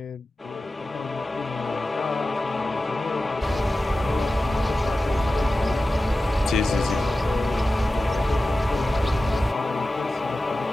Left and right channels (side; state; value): both; normal; correlation 0.94